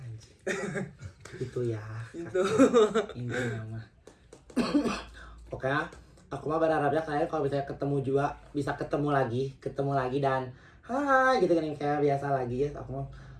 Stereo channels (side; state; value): both; identical; correlation 1.00